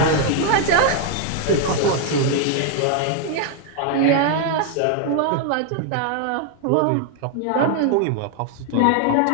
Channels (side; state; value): both; different; correlation 0.00